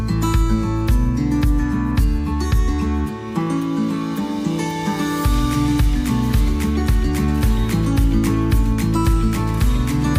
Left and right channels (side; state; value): both; identical; correlation 1.00